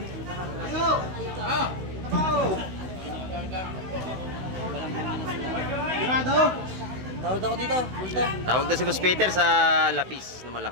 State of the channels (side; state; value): left; late; 16 ms